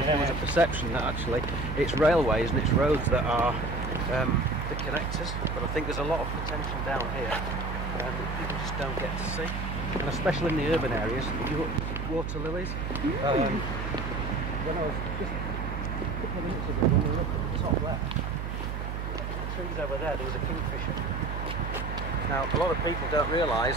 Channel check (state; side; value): noise; right; hum, 4 dB below the sound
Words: there was a perception that actually it's railways and it's roads that are the connectors, but I think there's a lot of potential down here that people just don't get to see. And especially in the urban areas, you look water lilies. When I was just a couple of minutes ago, when we looked at the top left, the trees over there was a kingfisher. Now, a lot of people don't